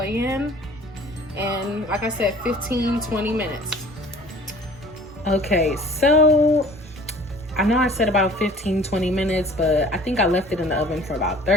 in, and like I said, 15-20 minutes. Okay, so I know I said about 15-20 minutes, but I think I left it in the oven for about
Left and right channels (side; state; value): both; normal; correlation 0.49